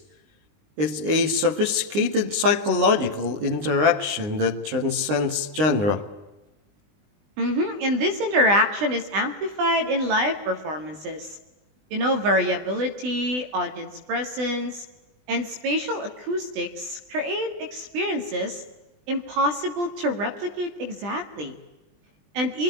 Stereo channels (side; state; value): left; late; 20 ms